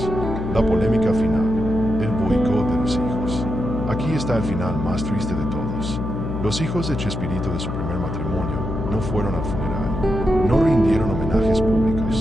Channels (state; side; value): noise; left; hum, 4 dB below the sound